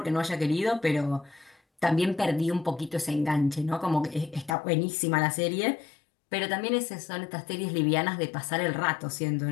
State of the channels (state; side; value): drops out; right; at 4.5 s